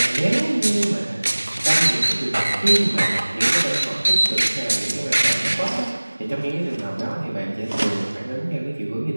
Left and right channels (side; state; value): both; inverted; correlation -1.00